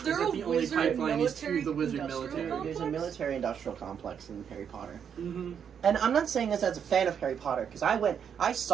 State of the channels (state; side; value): quieter; left; 7.8 dB